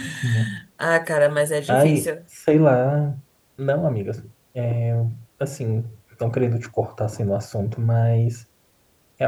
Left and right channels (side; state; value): both; identical; correlation 1.00